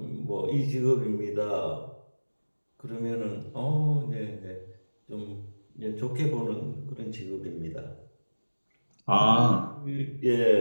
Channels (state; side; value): inverted; both; correlation -1.00